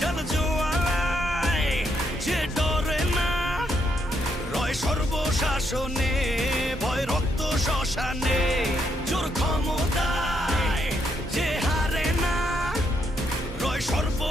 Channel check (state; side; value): normal; both; correlation 0.76